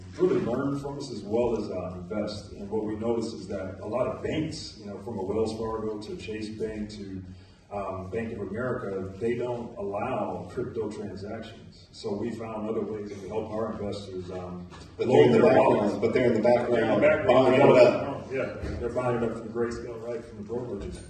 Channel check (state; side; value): identical; both; correlation 1.00